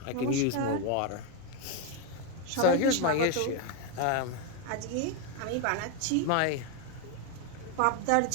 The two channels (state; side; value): different; both; correlation 0.02